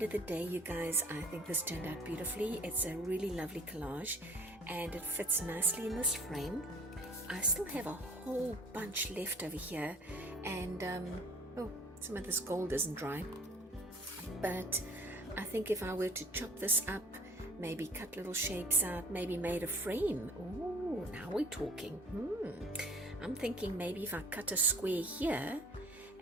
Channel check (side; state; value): both; normal; correlation 0.51